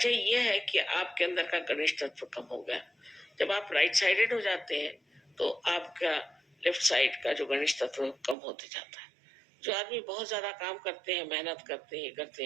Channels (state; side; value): drops out; left; at 8.3 s